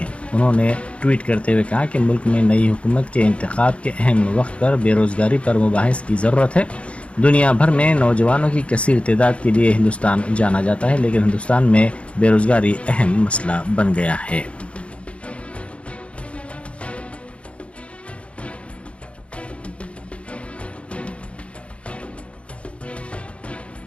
उन्होंने ट्वीट करते हुए कहा कि मुल्क में नई हुकूमत के इंतखाब के अहम वक्त पर बेरोजगारी पर मुबाहिस की ज़रूरत है। दुनिया भर में नौजवानों की कसीर तादाद के लिए हिंदुस्तान जाना जाता है, लेकिन हिंदुस्तान में बेरोजगारी अहम मसला बन गया है।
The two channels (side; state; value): right; late; 0.061 ms